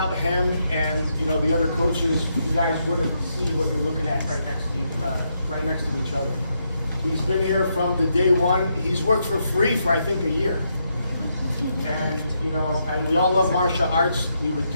him and the other coaches, you guys wouldn't see what you're looking at right next to each other. He's been here from the day one. He's worked for free for I think a year, and and we all love martial arts. We would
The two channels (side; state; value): both; inverted; correlation -0.80